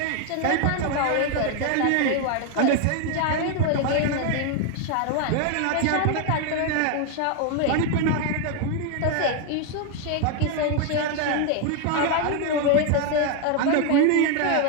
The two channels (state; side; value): different; both; correlation 0.01